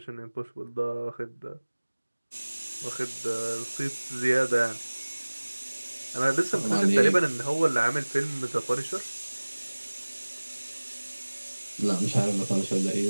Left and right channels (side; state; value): both; inverted; correlation -1.00